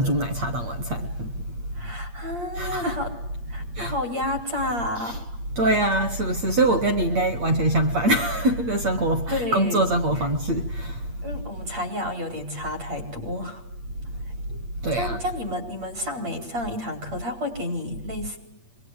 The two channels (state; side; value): late; left; 8.5 ms